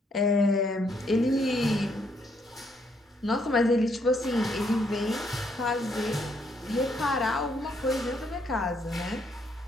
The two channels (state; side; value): normal; both; correlation 0.72